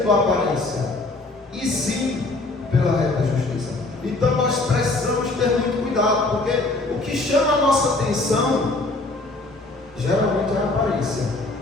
a aparência, e sim pela reta justiça. Então nós precisamos ter muito cuidado, porque o que chama a nossa atenção geralmente é a aparência,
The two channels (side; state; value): right; quieter; 3.1 dB